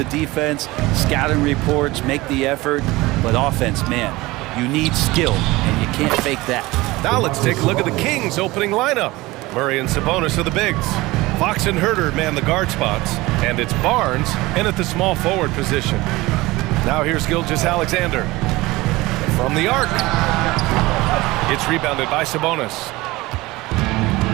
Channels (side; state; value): left; quieter; 20.4 dB